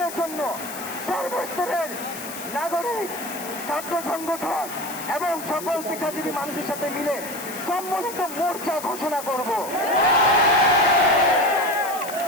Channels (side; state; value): left; noise; hiss, 11 dB below the sound